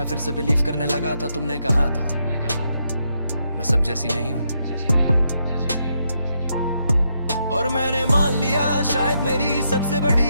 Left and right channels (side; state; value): both; inverted; correlation -0.79